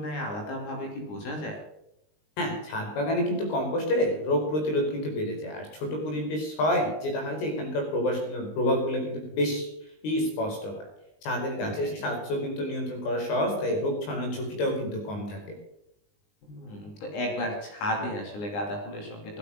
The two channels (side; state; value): right; late; 19 ms